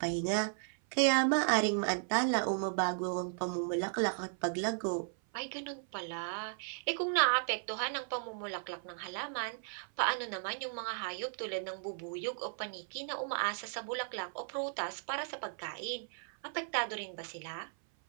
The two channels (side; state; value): left; silent; 54 dB below the other